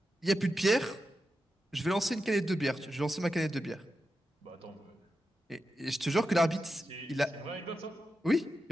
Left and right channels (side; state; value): both; normal; correlation 0.89